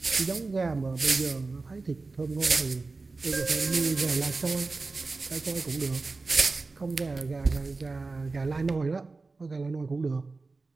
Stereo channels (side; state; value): left; quieter; 3.7 dB